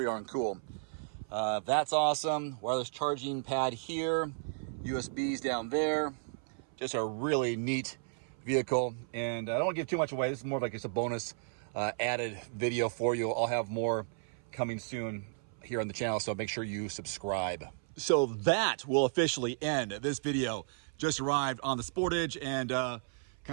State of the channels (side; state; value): left; silent; 55 dB below the other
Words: darn cool. That's awesome. Wireless charging pad here, USBs down there. Just a really neat vehicle. And I don't want to give too much away. This is more of like just a bonus added video for you. I'll have more coming soon here on the channel, so make sure you subscribe. So that will officially end this video. Just arrived on the Sportage and